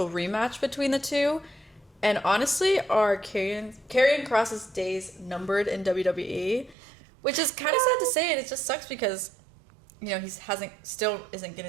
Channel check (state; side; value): drops out; left; at 6.8 s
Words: rematch between the two? And honestly, are Karrion Kross's days numbered in WWE? Which is kind of sad to say, and it just sucks because, you know, still isn't